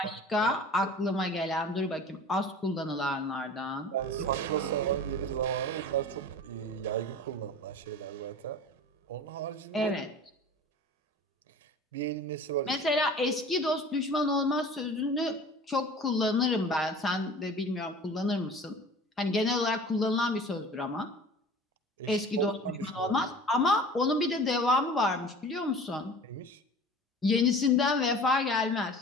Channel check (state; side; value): normal; both; correlation 0.41